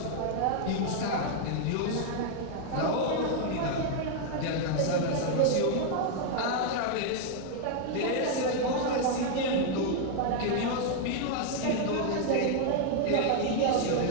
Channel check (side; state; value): both; different; correlation 0.00